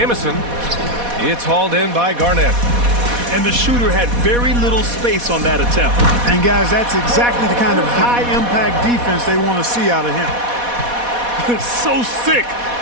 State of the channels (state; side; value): late; left; 4.1 ms